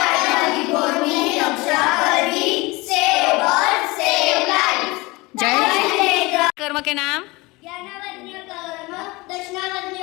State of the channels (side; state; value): right; quieter; 23.2 dB